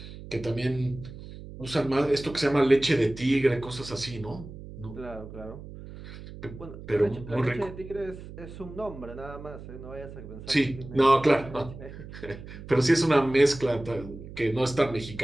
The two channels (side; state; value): right; noise; hum, 14 dB below the sound